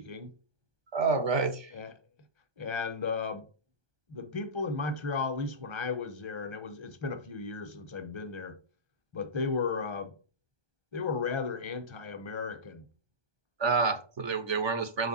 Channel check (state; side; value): late; left; 1.2 ms